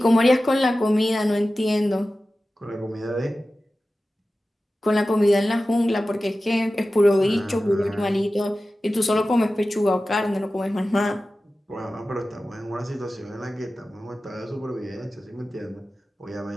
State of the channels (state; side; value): normal; both; correlation 0.95